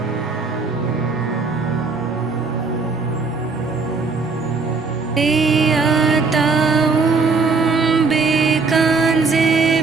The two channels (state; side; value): quieter; left; 4.4 dB